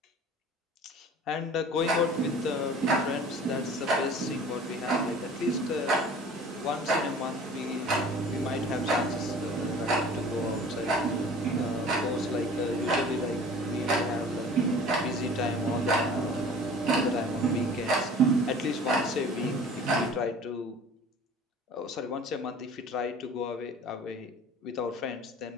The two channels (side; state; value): both; normal; correlation 0.45